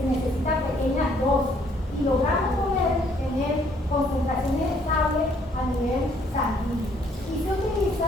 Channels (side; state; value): both; normal; correlation 0.65